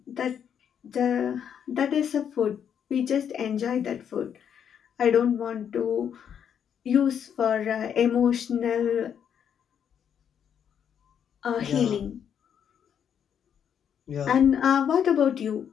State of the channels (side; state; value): right; quieter; 8.4 dB